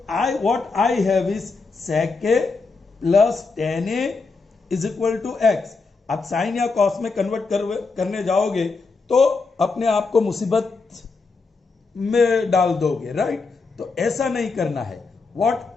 I what I have is sec a plus tan a is equal to x. आप sine या cos में convert करने जाओगे तो अपने आप को मुसीबत में डाल दोगे, राइट? तो ऐसा नहीं करना है. What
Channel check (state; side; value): quieter; right; 4.2 dB